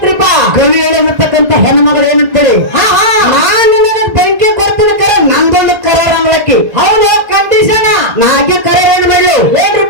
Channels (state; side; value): late; left; 1.9 ms